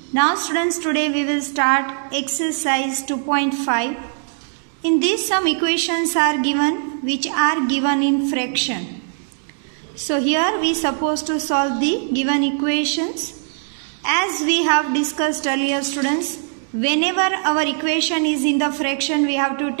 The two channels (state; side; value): silent; left; digital silence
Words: Now students, today we will start exercise 2.5. In this some equations are given which are given in fraction. So here we supposed to solve the given equations. As we have discussed earlier students, whenever our equation is in the fraction we have to